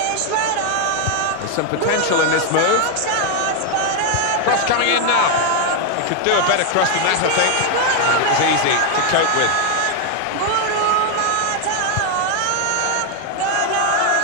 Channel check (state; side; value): different; both; correlation 0.00